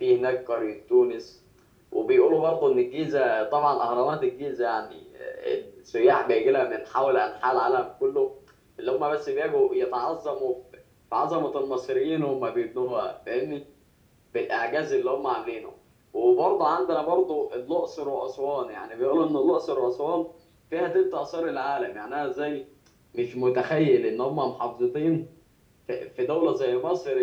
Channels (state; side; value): identical; both; correlation 1.00